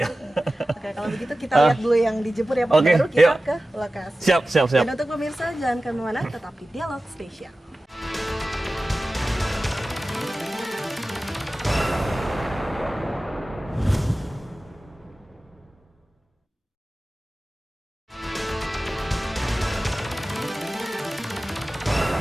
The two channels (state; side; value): normal; both; correlation 0.96